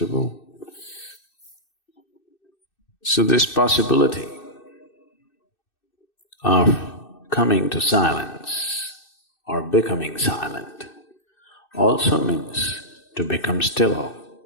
So this possibility of coming to silence or becoming silent also means to become still,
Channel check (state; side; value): late; right; 2.6 ms